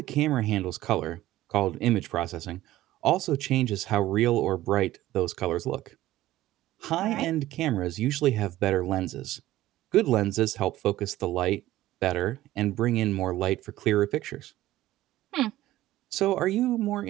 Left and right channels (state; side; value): quieter; left; 15.4 dB